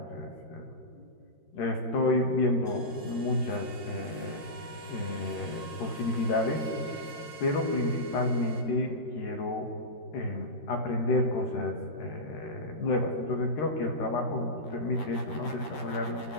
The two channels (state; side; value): late; right; 13 ms